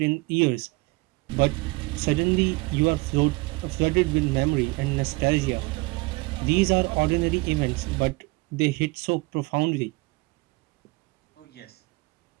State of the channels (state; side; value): quieter; left; 24.6 dB